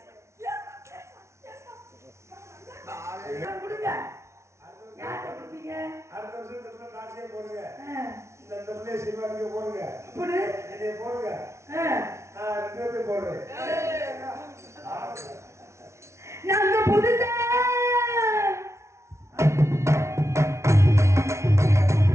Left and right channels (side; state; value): left; late; 0.13 ms